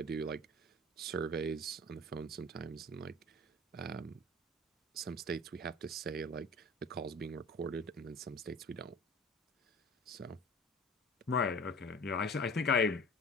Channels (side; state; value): both; normal; correlation 0.43